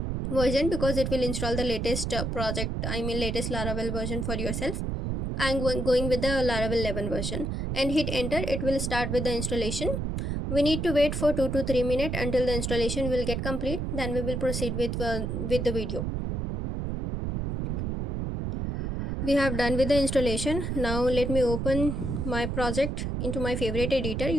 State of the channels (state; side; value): noise; right; rumble, 2 dB below the sound